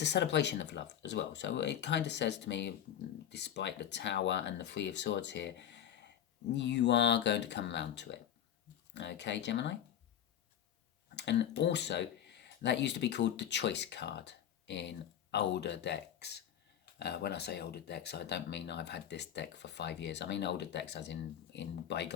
a celebration of love as well. So it kind of says to me, despite the Tower and the Three of Swords here, you are going to come around to it. Okay, Gemini? And also, that used to be called the Choice card in older decks. When I say older decks, I don't mean I've had this deck for 5 years. I mean older decks as in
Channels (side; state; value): right; quieter; 10.1 dB